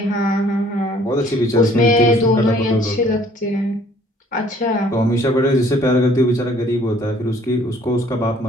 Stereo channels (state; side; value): normal; both; correlation 0.58